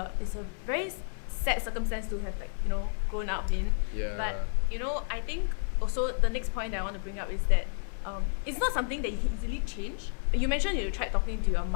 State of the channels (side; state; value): right; silent; digital silence